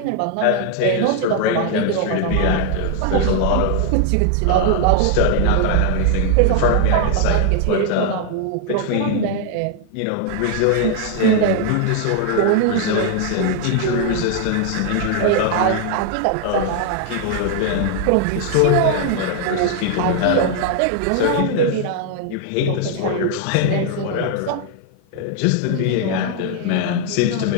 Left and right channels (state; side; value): different; both; correlation 0.00